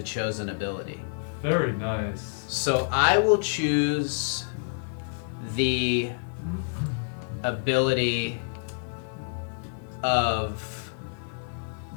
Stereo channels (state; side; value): silent; right; digital silence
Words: chosen ability. very nice. So I will choose the ability of